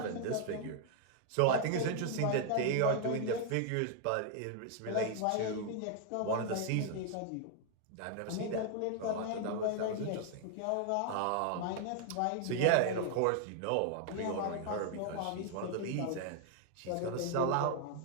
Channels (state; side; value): different; both; correlation 0.00